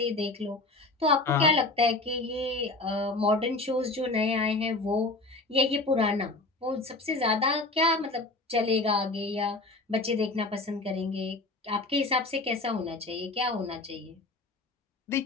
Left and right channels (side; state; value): right; quieter; 3.1 dB